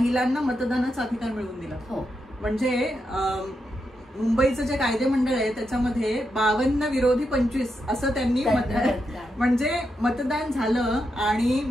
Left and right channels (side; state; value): both; normal; correlation 0.84